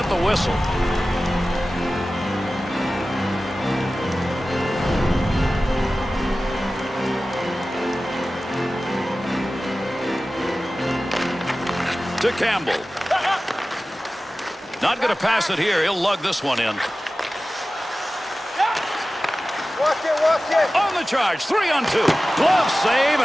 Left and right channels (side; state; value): both; normal; correlation 0.96